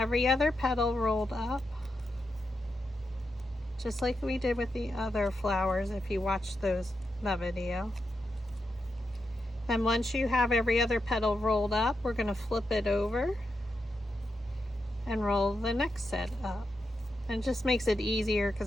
other petal rolled up, just like we did with the other flowers if you watched that video. Then once you have every other petal rolled up, we're going to flip it over and roll the next set up. And it just makes it easier because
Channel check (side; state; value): both; normal; correlation 0.86